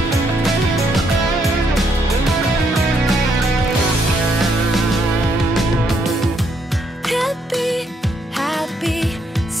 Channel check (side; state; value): both; normal; correlation 0.74